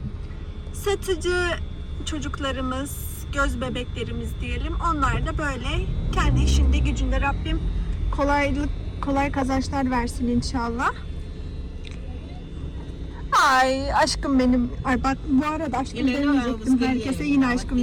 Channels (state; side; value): identical; both; correlation 1.00